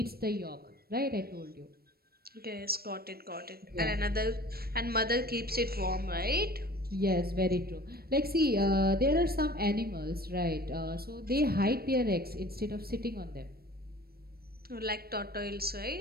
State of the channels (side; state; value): left; late; 0.44 ms